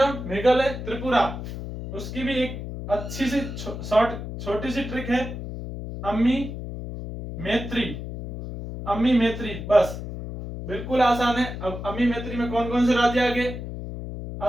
मेघालय, त्रिपुरा। उसकी भी एक अच्छी सी छोटी सी ट्रिक है, अम्मी मैत्री। अम्मी मैत्री, बस बिल्कुल आसान है। अब अम्मी मैत्री में कौन कौन से राज्य आ गए?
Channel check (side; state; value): left; noise; hum, 8 dB below the sound